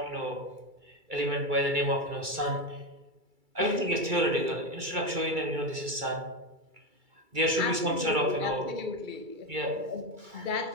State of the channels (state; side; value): late; left; 2.3 ms